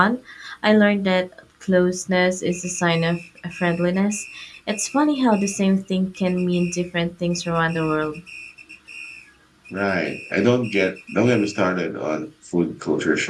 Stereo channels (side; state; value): both; identical; correlation 1.00